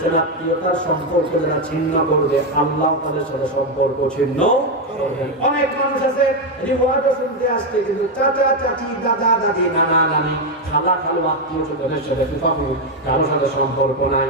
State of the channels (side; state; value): both; normal; correlation 0.06